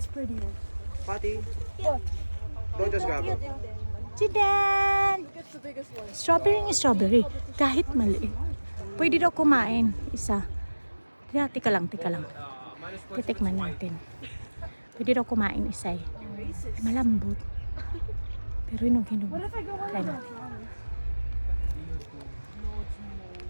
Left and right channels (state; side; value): inverted; both; correlation -1.00